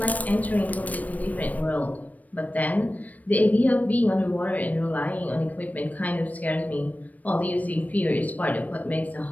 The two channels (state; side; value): late; right; 0.074 ms